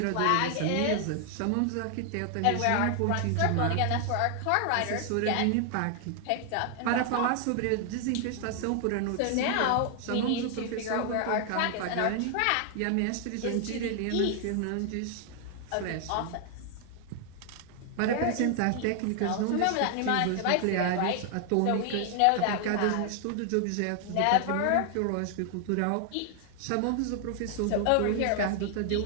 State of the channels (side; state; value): both; different; correlation 0.00